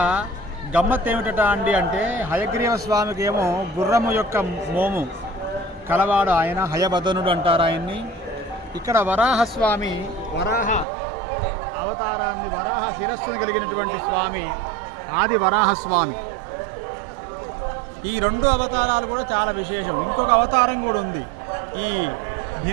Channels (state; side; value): drops out; left; at 10.9 s